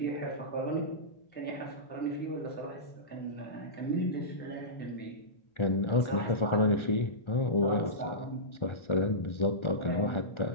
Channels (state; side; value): late; right; 1.3 ms